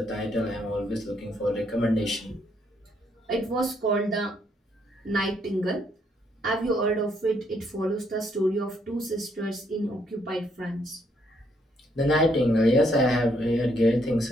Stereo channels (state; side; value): normal; both; correlation 0.72